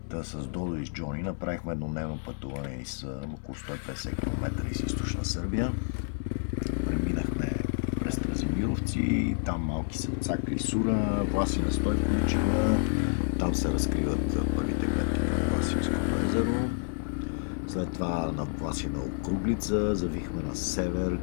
Та с Додо и с Джони направихме еднодневно пътуване из около 150 км из източна Сърбия. Преминахме през Стразимировци, там малки селца Клисура, Власина Стойковичева, там се разкриват първите гледки към Власинското езеро. След това на Власина Округлица завихме на север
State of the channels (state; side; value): silent; right; 58 dB below the other